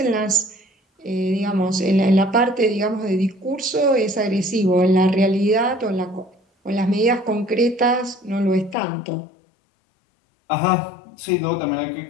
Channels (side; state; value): right; drops out; at 8.8 s